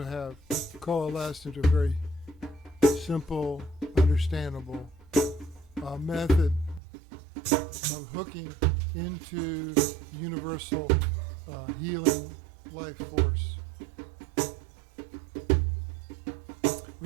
have coalesced into a very simple, understandable method of hooking into universal healing life force,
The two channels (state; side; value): drops out; left; at 6.8 s